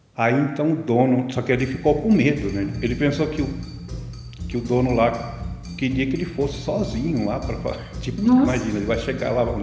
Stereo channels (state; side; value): identical; both; correlation 1.00